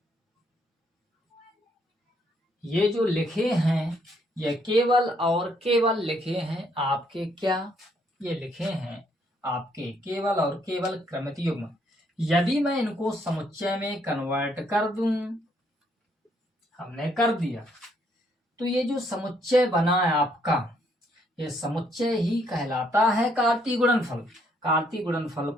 ये जो लिखे हैं ये केवल और केवल लिखे हैं आपके क्या, ये लिखे हैं आपके केवल और केवल क्रमित युग्म। यदि मैं इनको समुच्चय में कन्वर्ट कर दूं, हमने कर दिया, तो ये जो समुच्चय बना है आपका, ये समुच्चय ही कहलाता है कार्तीय गुणनफल। कार्तीय गुणनफल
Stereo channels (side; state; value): both; normal; correlation 0.70